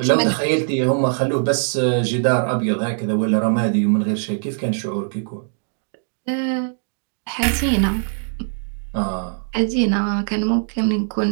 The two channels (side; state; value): left; silent; digital silence